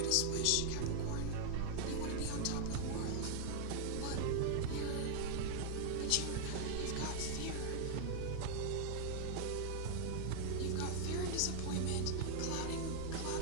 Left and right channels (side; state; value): both; different; correlation -0.01